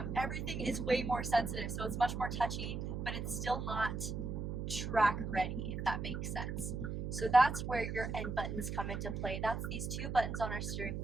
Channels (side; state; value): right; noise; hum, 3 dB below the sound